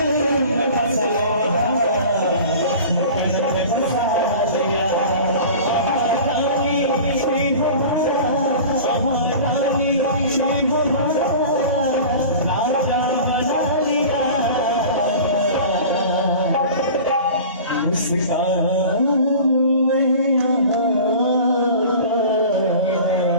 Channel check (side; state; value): both; inverted; correlation -0.38